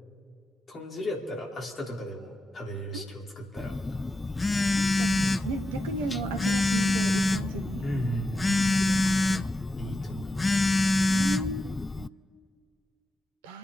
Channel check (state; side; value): normal; both; correlation 0.89